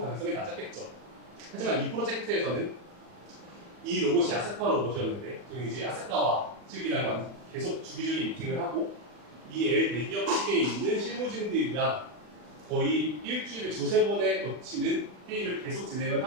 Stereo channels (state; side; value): late; left; 40 ms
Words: 낮았겠죠. 하지만 이 프로젝트에서는 이 로봇이 아세카 로봇이었는데 저희는 이제 아세카와 측이랑 계속 주기적인 미팅을 하고 이 대기업 측에 있는 실무진들이랑 거의 일주일에 두세 번에 거치는 회의를 계속 진행을